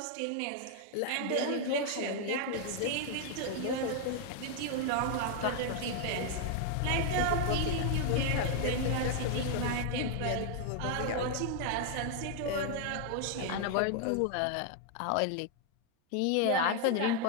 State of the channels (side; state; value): both; different; correlation 0.00